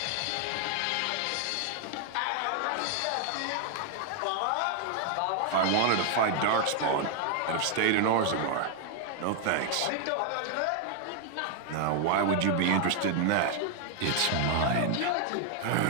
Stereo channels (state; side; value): different; both; correlation 0.00